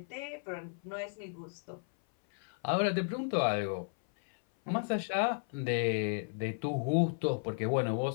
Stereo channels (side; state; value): right; silent; 55 dB below the other